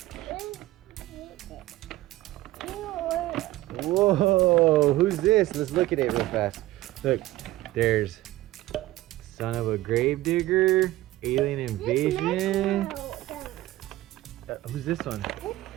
Whoa, who's this? Let's look at it real fast. Look, there's Son of a Gravedigger, Alien Invasion. Who's this one?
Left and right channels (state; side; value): quieter; left; 16.8 dB